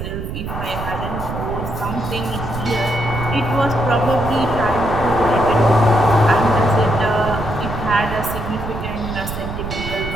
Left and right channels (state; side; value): noise; right; rumble, 7 dB below the sound